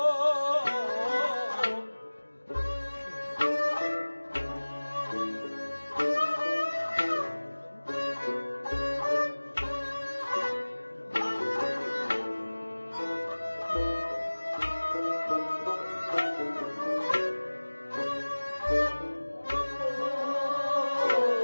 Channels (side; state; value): both; inverted; correlation -1.00